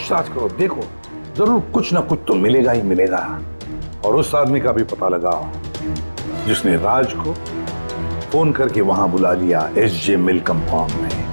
करो, देखो जरूर कुछ ना कुछ तो मिलेगा ही मिलेगा। और उस आदमी का भी पता लगाओ जिसने राज को फोन करके वहां बुला लिया एसजे मिल कंपाउंड में।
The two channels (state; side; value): inverted; both; correlation -1.00